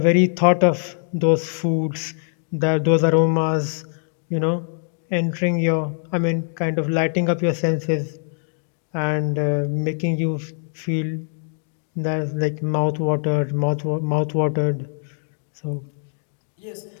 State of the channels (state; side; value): silent; right; digital silence